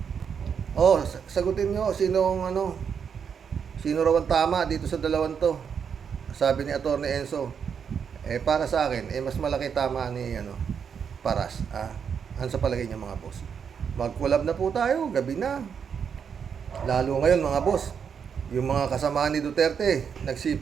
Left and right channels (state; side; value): quieter; left; 7.0 dB